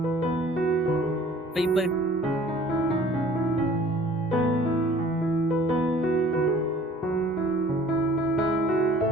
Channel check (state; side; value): normal; both; correlation 0.51